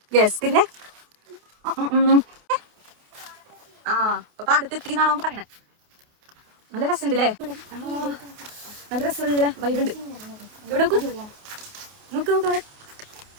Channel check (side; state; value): left; late; 28 ms